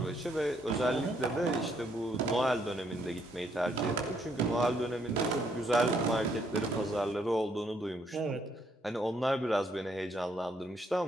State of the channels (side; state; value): both; normal; correlation 0.71